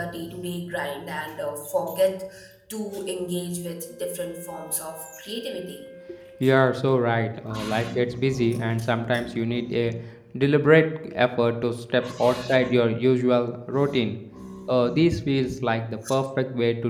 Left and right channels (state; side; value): identical; both; correlation 1.00